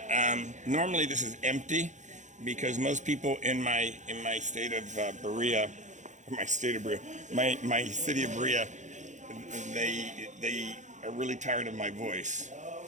normally this is empty because most people in my state of Berea, my city of Berea, they are really tired of my voice.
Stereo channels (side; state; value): left; late; 0.35 ms